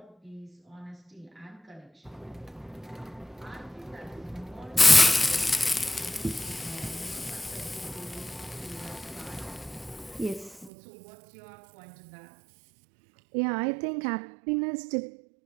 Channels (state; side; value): drops out; left; at 10.7 s